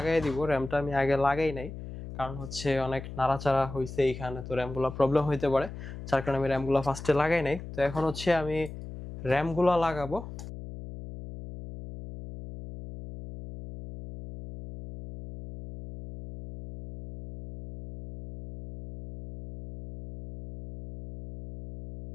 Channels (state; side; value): noise; left; hum, 11 dB below the sound